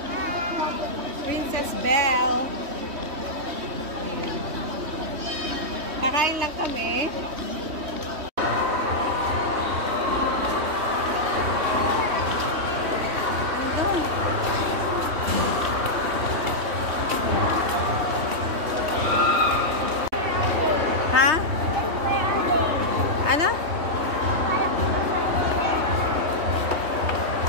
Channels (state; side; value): late; left; 3.1 ms